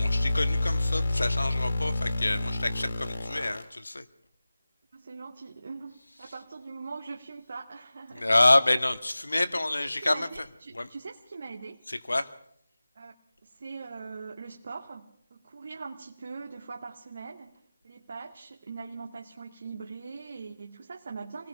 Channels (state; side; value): inverted; both; correlation -0.96